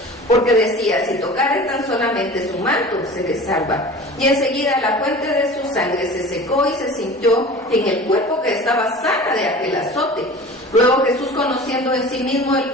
porque decía: si tocare tan solamente su manto, seré salva. Y enseguida la fuente de su sangre se secó, y se sintió en el cuerpo que estaba sana de aquel azote. Luego Jesús, conociendo en sí mismo el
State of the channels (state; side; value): normal; both; correlation 0.39